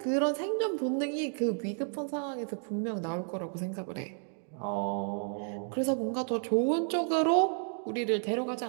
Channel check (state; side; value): silent; left; 55 dB below the other